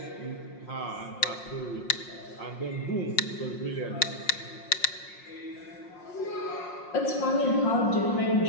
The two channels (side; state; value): right; late; 5.6 ms